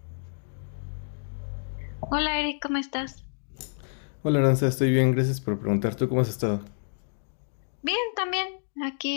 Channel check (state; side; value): silent; right; digital silence